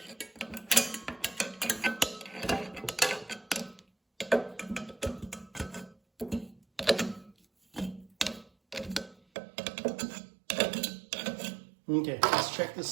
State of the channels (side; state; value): left; drops out; at 9.2 s